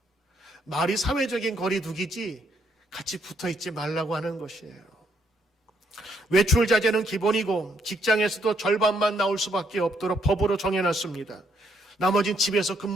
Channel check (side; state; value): both; normal; correlation 0.72